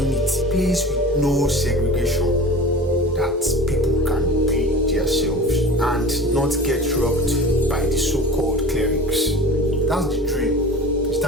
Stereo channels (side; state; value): both; normal; correlation 0.37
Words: a place with no segregation, that people can be themselves and not get robbed by the so-called clerics. That's the dream, is